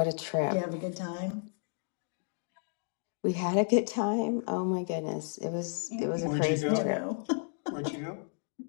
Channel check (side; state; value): right; silent; 56 dB below the other